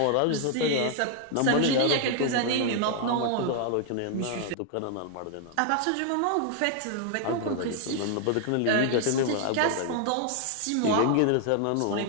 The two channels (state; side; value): different; both; correlation 0.00